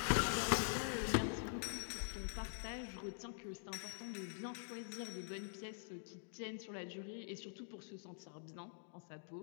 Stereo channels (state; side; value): silent; right; digital silence